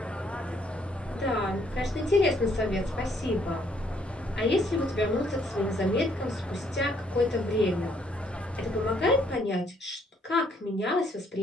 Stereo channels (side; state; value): both; normal; correlation 0.68